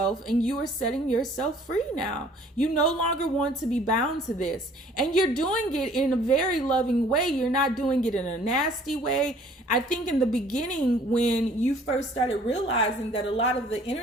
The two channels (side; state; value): both; normal; correlation 0.55